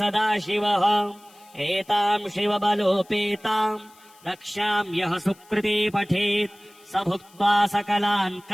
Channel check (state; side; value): noise; left; hiss, 27 dB below the sound